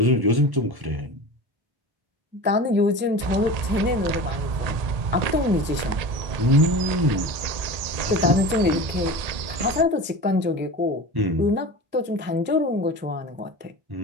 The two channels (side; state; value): left; late; 1.8 ms